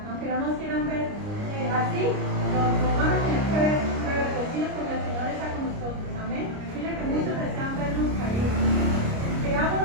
Aunque no nos quieran ver así, nos van a tener que ver reverdecidos porque el Señor está con nosotros. Amén. Mire que muchos desean vernos caídos.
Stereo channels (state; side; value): late; left; 29 ms